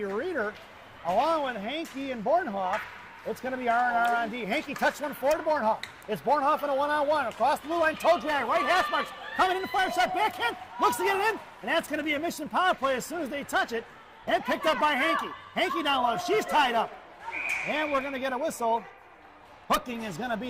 Reeder, along with Hankey and Bornhoff. It's going to be R&R on D. Hankey touched one forward to Bornhoff. It's Bornhoff in a one-on-one. Across the blue line, toe drag, right hash marks. Coming in the fire shot, backhand, looks to get it in. And that's going to be a Mission power play as soon as they touch it. And picked up by Hankey. Hankey down low, she's tied up. And we're going to get a whistle. Hooking is going to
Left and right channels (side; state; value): both; identical; correlation 1.00